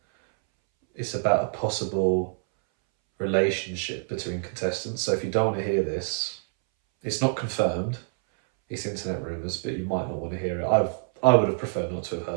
It's about a possible relationship between contestants. So if you don't want to hear this, it's not confirmed. It's internet rumours, but you might not want to hear it. I would have preferred not to have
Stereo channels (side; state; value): left; silent; 61 dB below the other